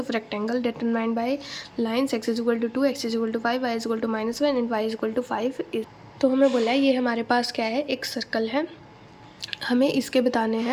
of rectangle determined by lines x is equal to 2 x is equal to 5 y is equal to -1 and y is equal to 5 is। तो हमें बोला है ये हमारे पास क्या है, एक circle है, हमें इसके बताने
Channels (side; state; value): both; identical; correlation 1.00